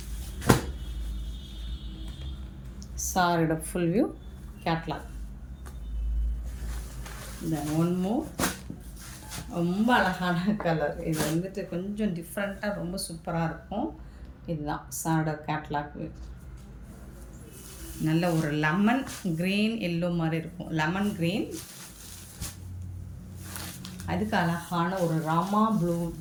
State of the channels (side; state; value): both; identical; correlation 1.00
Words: சாரியோட ஃபுல் வியூ, கேட்லாக். தென் ஒன் மோர், ரொம்ப அழகான கலர். இது வந்துட்டு கொஞ்சம் டிஃப்ரெண்ட்டாக ரொம்ப சூப்பராக இருக்கும். இதுதான் சாரோட கேட்லாக் வியூ. நல்ல ஒரு லெமன் க்ரீன் எல்லோ மாதிரி இருக்கும், லெமன் க்ரீன். அதுக்கு அழகான ஒரு ராமா ப்ளூ